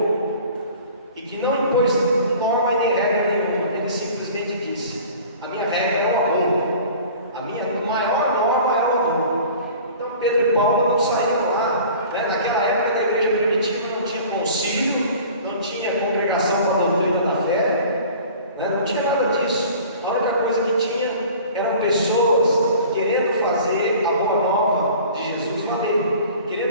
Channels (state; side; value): inverted; both; correlation -0.44